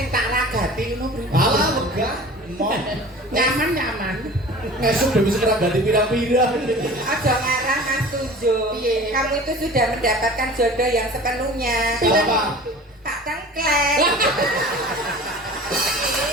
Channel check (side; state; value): both; normal; correlation 0.41